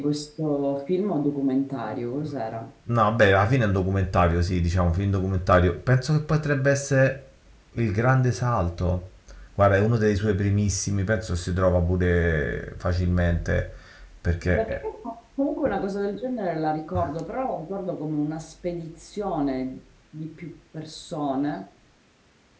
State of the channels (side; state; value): both; identical; correlation 1.00